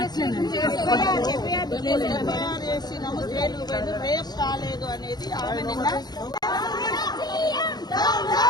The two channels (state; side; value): late; right; 0.20 ms